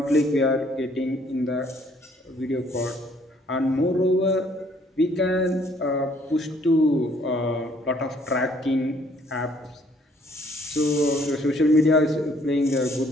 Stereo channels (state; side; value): normal; both; correlation 0.63